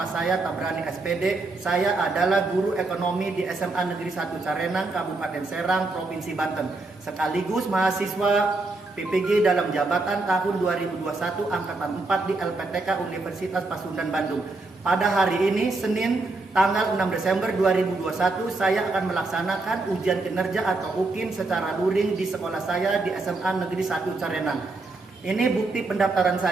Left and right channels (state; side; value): quieter; left; 3.3 dB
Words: saya Tabrani SPD. Saya adalah guru ekonomi di SMA Negeri 1 Carenang, Kabupaten Serang, Provinsi Banten. Sekaligus mahasiswa PPG dalam jabatan tahun 2021 angkatan 4 di LPTK Universitas Pasundan Bandung. Pada hari ini, Senin, tanggal 6 Desember 2021, saya akan melaksanakan ujian kinerja atau UKIN secara luring di sekolah saya di SMA Negeri 1 Carenang. Ini bukti pendaftaran